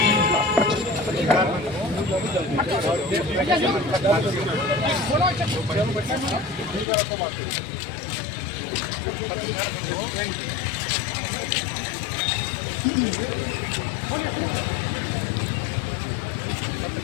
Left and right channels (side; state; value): right; drops out; at 6.9 s